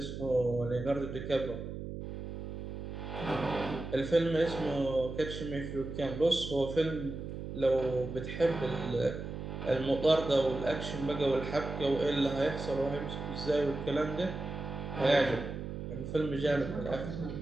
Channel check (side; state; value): right; noise; hum, 7 dB below the sound